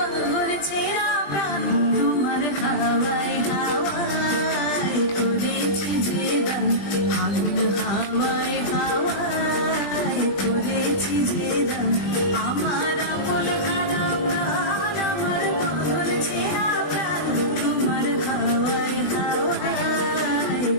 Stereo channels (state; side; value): late; right; 20 ms